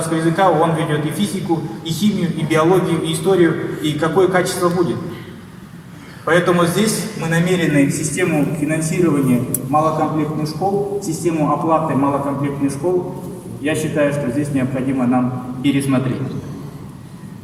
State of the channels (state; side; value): identical; both; correlation 1.00